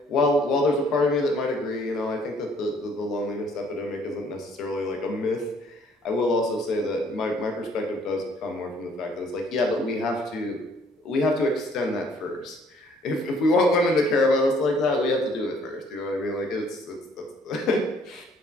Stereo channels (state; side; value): normal; both; correlation 0.61